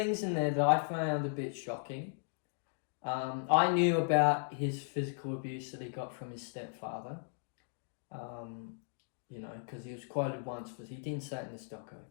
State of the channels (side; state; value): right; silent; digital silence